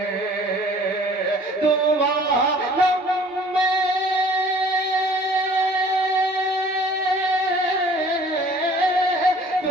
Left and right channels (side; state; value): both; normal; correlation 0.52